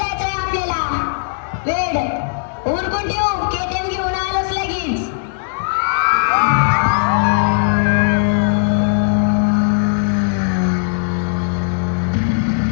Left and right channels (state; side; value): silent; right; 62 dB below the other